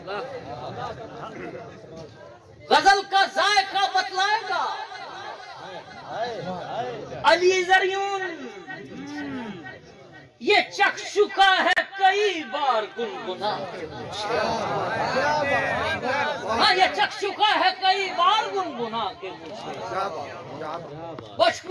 गजल का जायका बतलाएगा अली ज़रियून, ये चख चुका है कई बार गुनगुना के मुझे। हाँ ये चख चुका है कई बार गुनगुना के मुझे, बच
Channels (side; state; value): both; identical; correlation 1.00